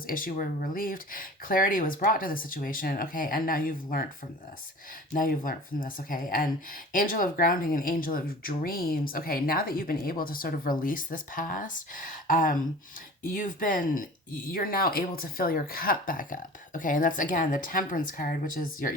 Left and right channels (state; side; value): normal; both; correlation 0.41